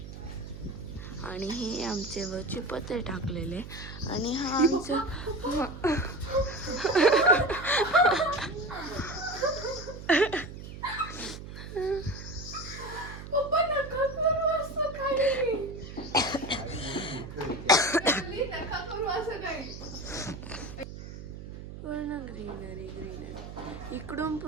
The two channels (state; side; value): noise; right; hum, 11 dB below the sound